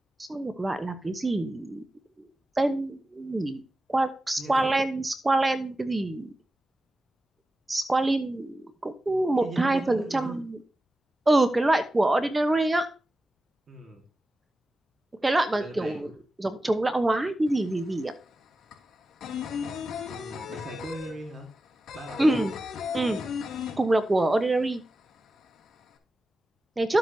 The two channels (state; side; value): normal; both; correlation 0.93